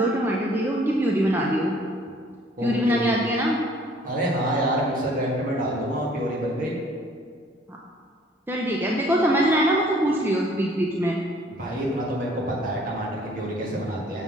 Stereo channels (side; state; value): both; normal; correlation 0.57